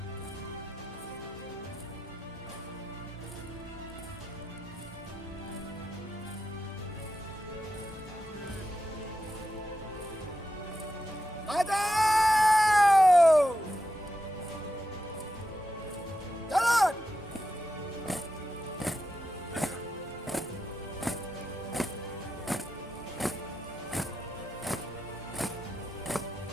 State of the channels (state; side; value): normal; both; correlation 0.88